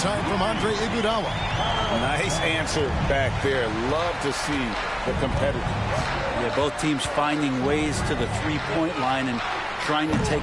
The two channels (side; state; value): both; identical; correlation 1.00